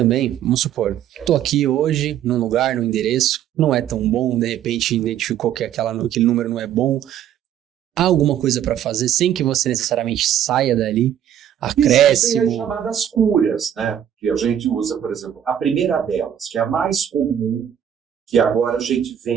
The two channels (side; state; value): left; quieter; 10.1 dB